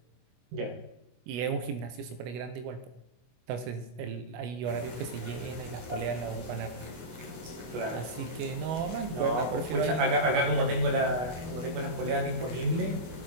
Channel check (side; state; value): left; late; 25 ms